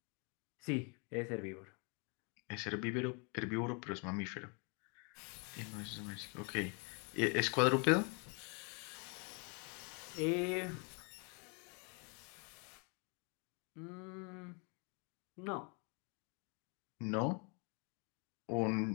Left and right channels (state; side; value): quieter; right; 34.9 dB